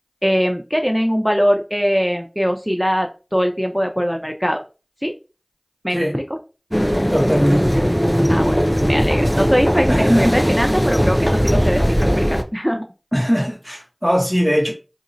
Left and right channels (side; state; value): both; identical; correlation 1.00